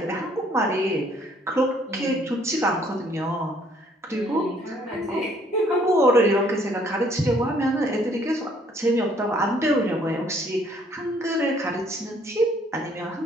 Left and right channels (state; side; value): normal; both; correlation 0.63